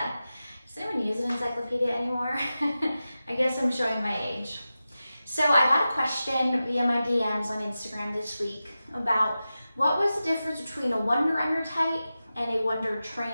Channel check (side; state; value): both; inverted; correlation -0.93